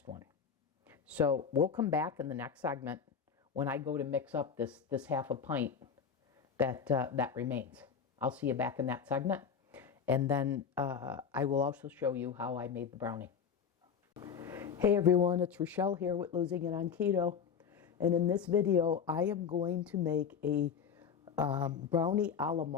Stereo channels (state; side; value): quieter; right; 6.9 dB